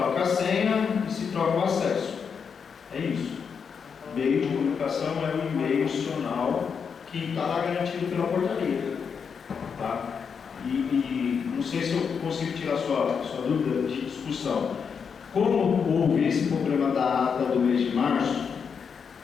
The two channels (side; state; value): right; quieter; 6.4 dB